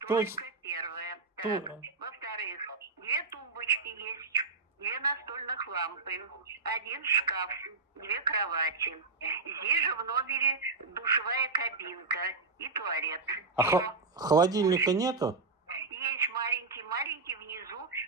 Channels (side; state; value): left; quieter; 4.0 dB